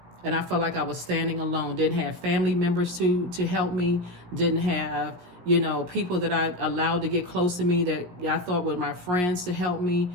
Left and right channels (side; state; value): left; late; 17 ms